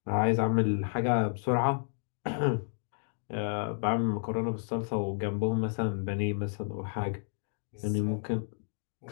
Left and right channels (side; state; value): right; silent; digital silence